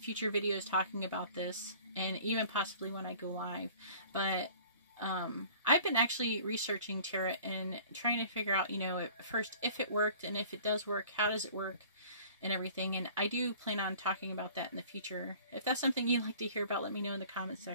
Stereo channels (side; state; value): both; inverted; correlation -0.49